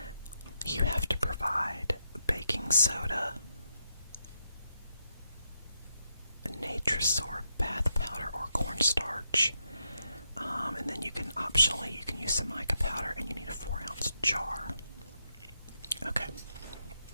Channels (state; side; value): inverted; both; correlation -0.83